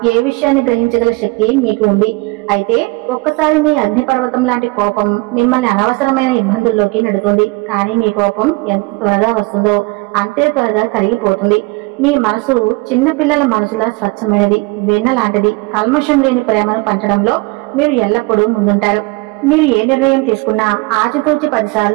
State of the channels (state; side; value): quieter; left; 25.2 dB